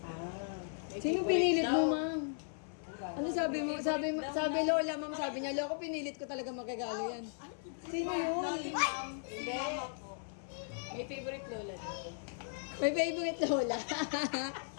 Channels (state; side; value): silent; right; 53 dB below the other